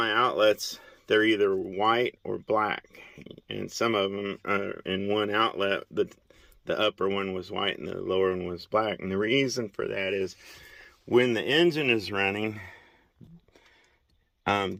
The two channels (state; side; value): identical; both; correlation 1.00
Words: outlets, they're either white or black, and some of them are in one outlet. The upper one was white and the lower one was black, and the reason for that is when the engine is running,